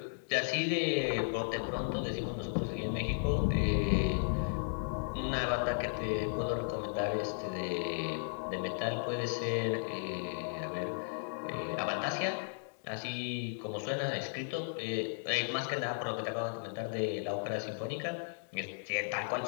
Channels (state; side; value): silent; right; digital silence